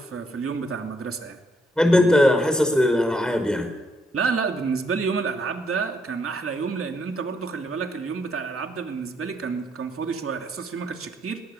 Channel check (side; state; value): both; normal; correlation 0.74